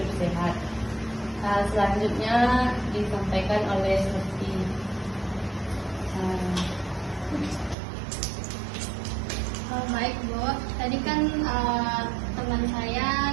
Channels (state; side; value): drops out; left; at 7.8 s